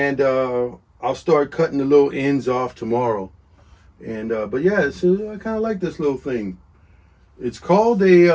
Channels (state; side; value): identical; both; correlation 1.00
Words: I'll start cutting the little ends off tomorrow. And but yeah, I kind of like this little thing. It's called